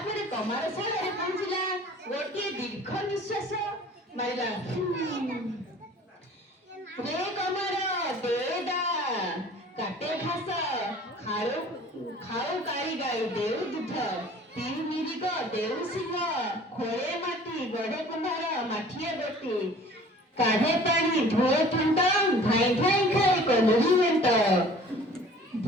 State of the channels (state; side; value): normal; both; correlation 0.48